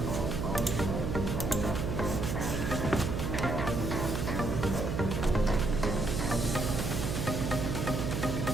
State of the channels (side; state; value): right; noise; hum, 2 dB below the sound